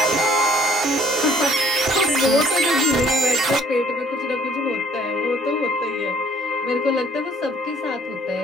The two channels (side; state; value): both; normal; correlation 0.60